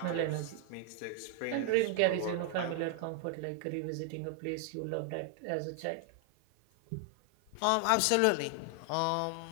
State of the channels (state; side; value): different; both; correlation 0.00